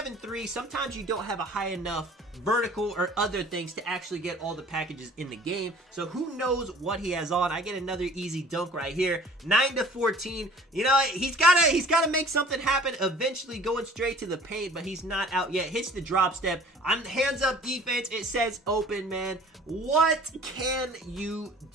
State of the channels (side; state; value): both; normal; correlation 0.49